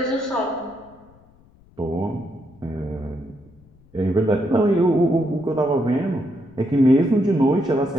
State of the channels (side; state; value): left; noise; rumble, 28 dB below the sound